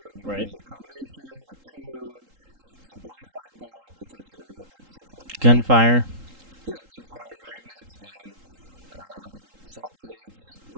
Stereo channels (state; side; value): late; left; 3.8 ms